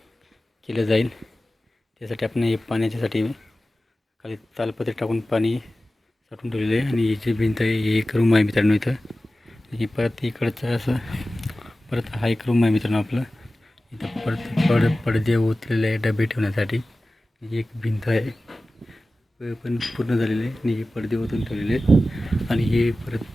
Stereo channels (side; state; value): both; normal; correlation 0.96